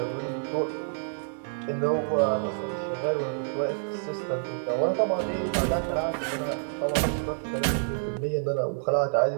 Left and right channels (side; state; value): left; silent; digital silence